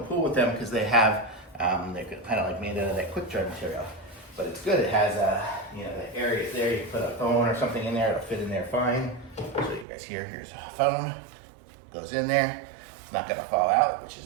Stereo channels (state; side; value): drops out; left; at 9.9 s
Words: pool with them because they have, they're kind of like made out of that quick dry material. But it's good. It has the areas there. You can put a phone or something in there. It'll fit in there fine. So you guys here's a phone. Goes in there. It's not gonna fall out, which